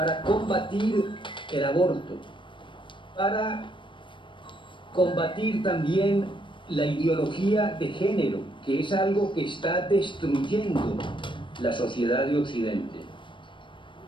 combatir el aborto, para combatir también la ideología de género, que es algo que está destruyendo la sociedad de Occidente.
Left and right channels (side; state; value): right; late; 0.24 ms